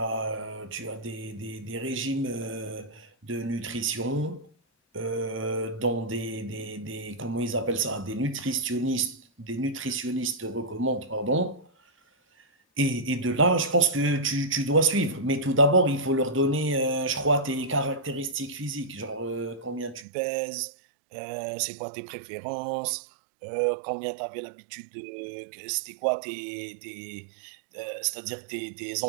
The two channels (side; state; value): left; drops out; at 20.1 s